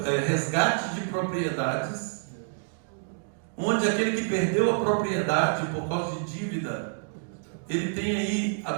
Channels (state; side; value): silent; left; digital silence